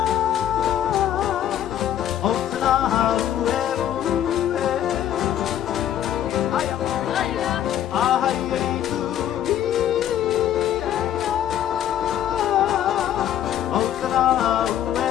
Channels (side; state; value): right; quieter; 10.9 dB